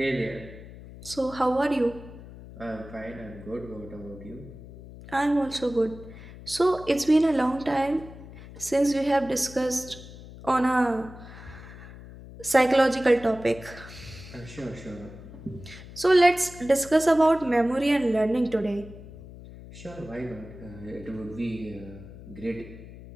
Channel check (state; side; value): noise; left; hum, 16 dB below the sound